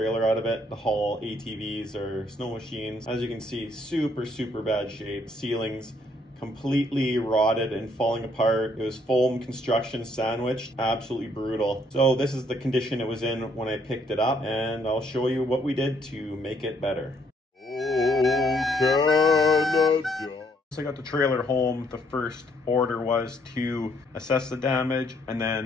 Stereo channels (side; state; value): both; normal; correlation 0.68